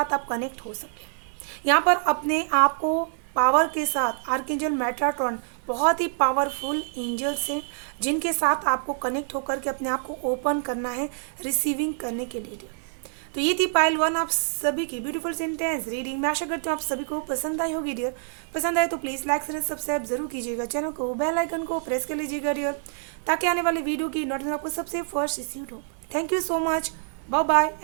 आप कनेक्ट हो सकें। यहाँ पर अपने आप को पावर के साथ आर्कएंजल मेटाट्रॉन बहुत ही पावरफुल एंजल्स हैं जिनके साथ आपको कनेक्ट होकर के अपने आप को ओपन करना है रिसीविंग करने के लिए। तो ये थी पाइल 1 आप सभी की ब्यूटीफुल सेंटेंस रीडिंग। मैं आशा करती हूँ आप सभी को पसंद आई होगी डियर। पसंद आए तो प्लीज़ लाइक शेयर सब्सक्राइब जरूर कीजिएगा, चैनल को बेल आइकन को प्रेस कर लीजिएगा डियर, ताकि आने वाली वीडियो की नोटिफिकेशन आपको सबसे फर्स्ट रिसीव हो। Thank you so much, bye bye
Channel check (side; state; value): left; silent; 61 dB below the other